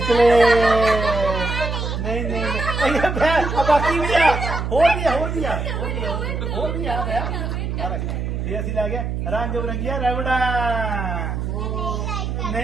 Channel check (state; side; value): noise; right; hum, 3 dB below the sound